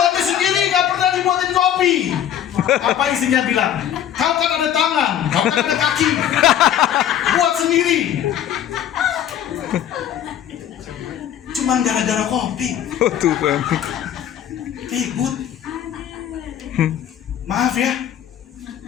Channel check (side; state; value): right; quieter; 10.3 dB